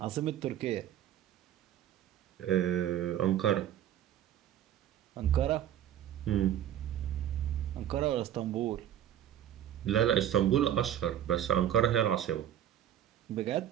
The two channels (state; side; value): quieter; left; 10.9 dB